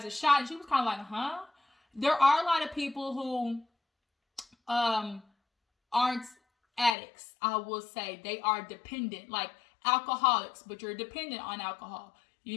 a shot, and she was kind of like, huh? There are a lot of people who aren't addicts, I will say. They are dependent, like alcoholics, but you're dependent on alcohol.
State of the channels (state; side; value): drops out; right; at 7.0 s